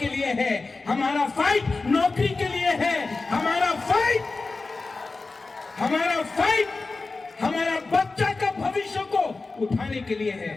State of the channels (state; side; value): quieter; right; 3.7 dB